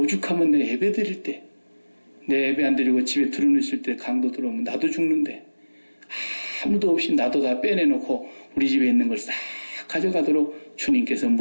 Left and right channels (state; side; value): inverted; both; correlation -1.00